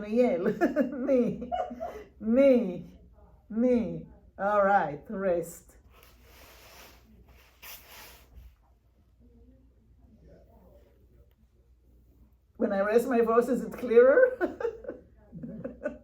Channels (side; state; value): both; identical; correlation 1.00